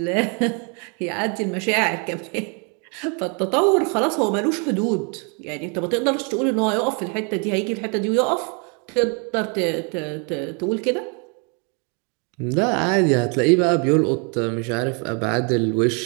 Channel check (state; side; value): quieter; left; 35.8 dB